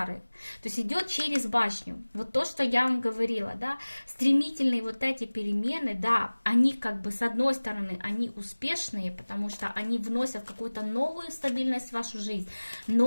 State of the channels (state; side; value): inverted; both; correlation -1.00